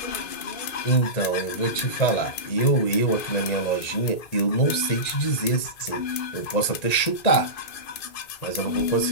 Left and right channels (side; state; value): right; late; 1.9 ms